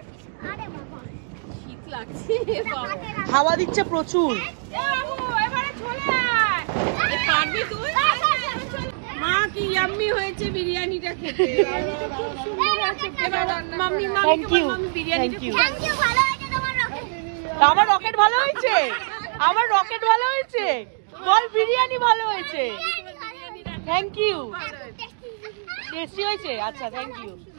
হাওয়া দিচ্ছে প্রচুর। মা কি ইয়াম্মি হয়েছে বিরিয়ানিটা খেতে, খুব সুন্দর হয়েছে। মাম্মি মাম্মি বিরিয়ানিটা আমার রকেট ভালো হয়েছে, আমার রকেট ভালো হয়েছে, বল বিরিয়ানি ভালো হয়েছে। Thank you. টেস্টি হয়েছে? আচ্ছা থ্যাংক ইউ।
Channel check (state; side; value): silent; left; digital silence